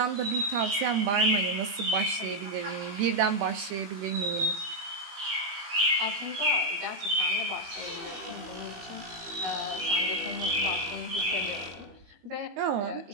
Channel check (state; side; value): late; left; 20 ms